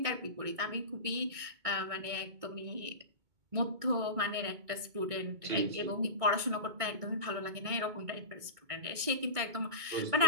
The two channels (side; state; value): left; late; 2.2 ms